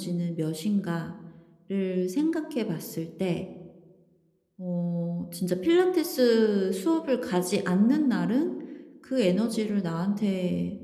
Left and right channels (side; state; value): both; identical; correlation 1.00